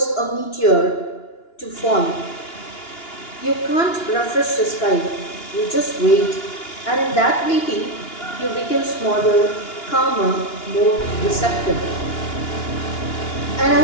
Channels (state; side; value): late; right; 2.9 ms